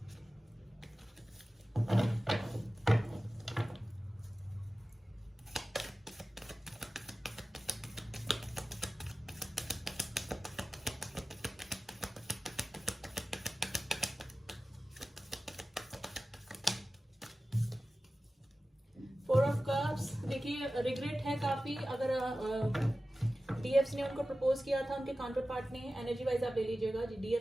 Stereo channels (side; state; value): both; normal; correlation 0.95